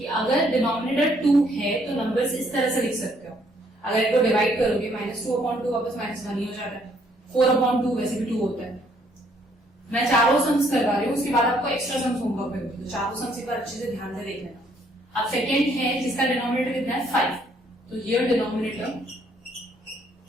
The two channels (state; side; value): normal; both; correlation 0.66